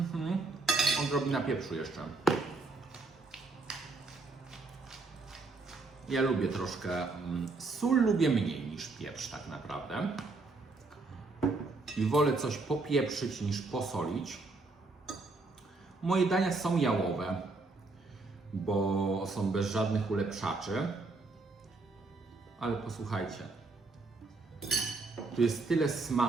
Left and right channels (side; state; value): left; quieter; 3.6 dB